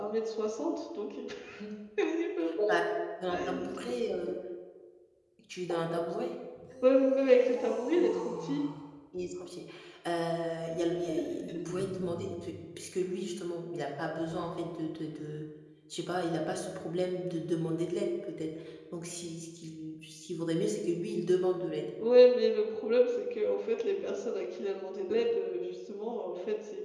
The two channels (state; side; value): identical; both; correlation 1.00